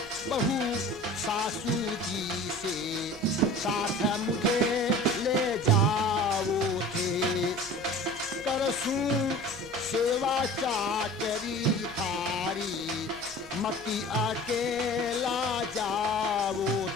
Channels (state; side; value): normal; both; correlation 0.41